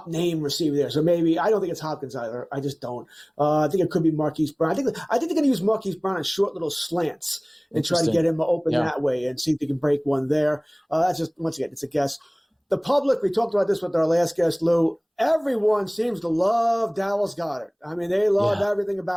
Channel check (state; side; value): identical; both; correlation 1.00